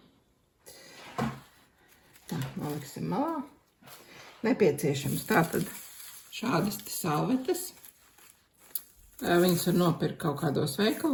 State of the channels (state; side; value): identical; both; correlation 1.00